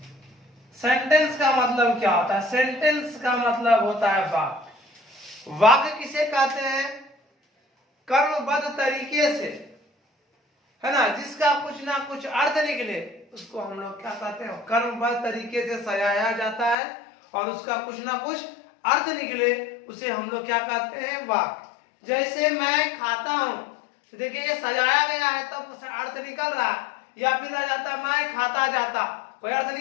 का मतलब क्या होता है? सेंटेंस का मतलब होता है वाक्य। वाक्य किसे कहते हैं? कर्मबद्ध तरीके से, है ना, जिसका कुछ ना कुछ अर्थ निकले उसको हम लोग क्या कहते हैं? कर्मबद्ध तरीके से सजाया जाता है और उसका कुछ ना कुछ अर्थ निकले उसे हम लोग क्या कहते हैं? वाक्य। जैसे मैं खाता हूं, तो देखिए ये सजाया गया है तब तो अर्थ निकल रहा है, या फिर आ जाता मैं खाता जाता, कोई अर्थ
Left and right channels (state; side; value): drops out; right; at 16.8 s